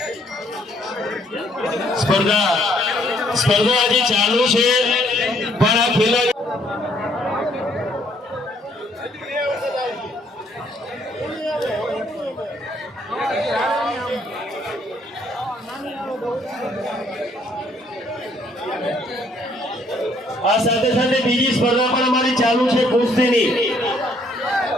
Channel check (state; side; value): normal; both; correlation 0.66